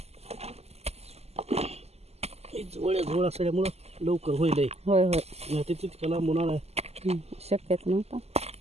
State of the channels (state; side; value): late; left; 0.30 ms